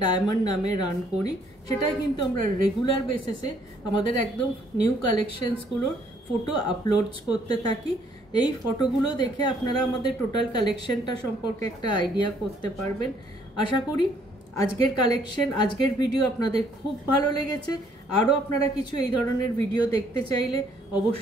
ডায়মন্ড নামে রান করি। সেটাই কিন্তু আমরা রেগুলার বেসিসে আমাদের একদম নিউ কালেকশনসগুলোর ফটো আপলোডস করতে থাকি। এই ফটোগুলো দেখে আপনারা আমাদের টোটাল কালেকশনটা সম্পর্কে একটা আইডিয়া করতে পারবেন। আশা করি আজকের কালেকশন, আজকের ভিডিও আপনাদের খুব ভালো লেগেছে। আরও আপনারা কিছু এই ধরনের ভিডিও দেখতে চাইলে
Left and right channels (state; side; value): normal; both; correlation 0.65